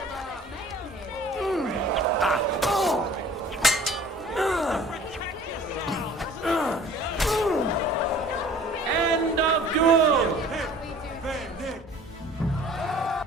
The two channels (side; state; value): both; normal; correlation 0.49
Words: End of duel!